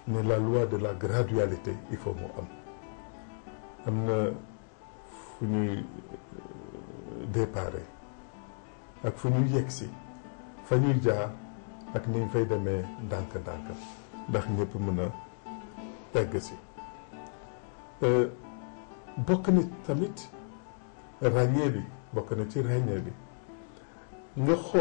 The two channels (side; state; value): right; silent; digital silence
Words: ne la loi de la gradualité il faut mu am na fu ñuy déparé ak fu ñuy yegsi fa ñuy jaar ak ni ñu fay demee ndànk-ndànk ndax ñëpp mën a egg si bokk na tamit ràññee bi bokk na ci ràññee bi nga